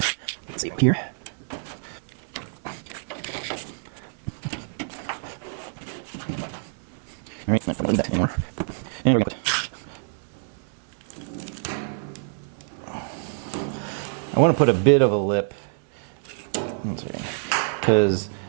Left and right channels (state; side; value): silent; left; digital silence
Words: let's see up here. All right, not going to need that anymore. And we're going to put. I want to put a bit of a lip, because